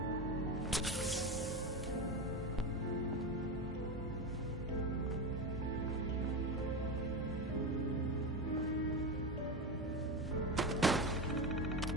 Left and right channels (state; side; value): normal; both; correlation 0.19